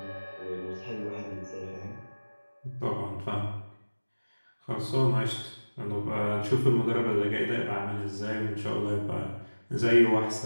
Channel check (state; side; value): inverted; both; correlation -1.00